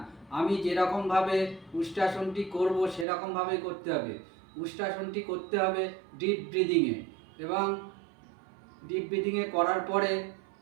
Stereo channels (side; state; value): left; drops out; at 3.1 s